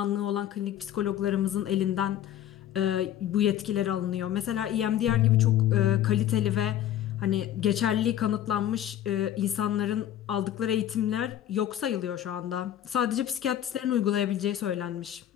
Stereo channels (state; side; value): quieter; right; 11.4 dB